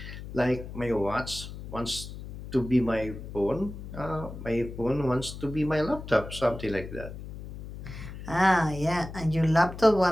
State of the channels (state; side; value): noise; left; hum, 11 dB below the sound